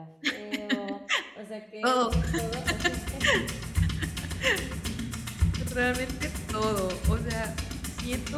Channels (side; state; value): both; identical; correlation 1.00